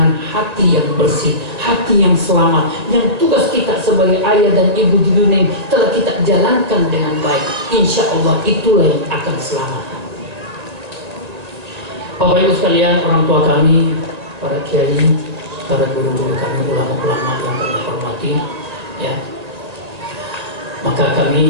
hati yang bersih, hati yang selamat, yang tugas kita sebagai ayah dan ibu di dunia telah kita jalankan dengan baik. Insya Allah itulah yang akan selamat. Bapak Ibu sekalian, orang tua kami, para kiai, para guru-guru kami, ulama-ulama yang kami hormati, ya, maka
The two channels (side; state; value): left; late; 1.8 ms